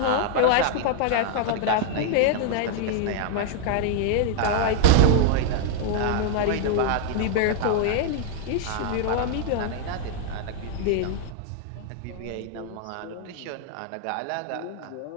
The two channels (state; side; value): different; both; correlation 0.00